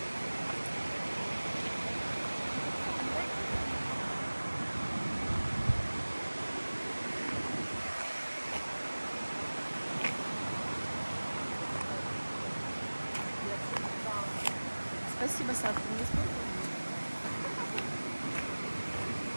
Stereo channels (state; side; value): inverted; both; correlation -1.00